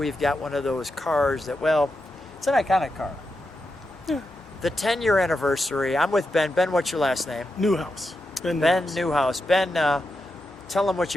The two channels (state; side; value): normal; both; correlation 0.87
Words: got one of those cars that, well, it's an iconic car. Yeah. The 10-year anniversary. I'm with Ben. Ben, what's your last name? Newhouse. Ben Newhouse. Ben, tell them what